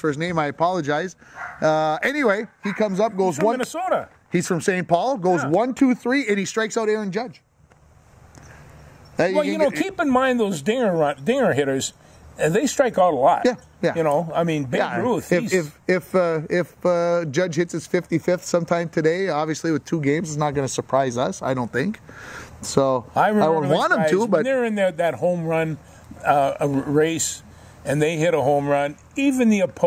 name. I apologize. Anyway, he comes up, goes from Minnesota. He's from St. Paul. Goes 1, 2, 3, and he strikes out Aaron Judge. Well, keep in mind those dinger hitters. They strike out a lot. Yeah. Babe Ruth. If Judge hits his 55th sometime today, obviously with 2 games, it's not going to surprise us. I don't think. So I would want him to, but when they're in that home run race, and they hit a home run, even the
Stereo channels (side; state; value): both; identical; correlation 1.00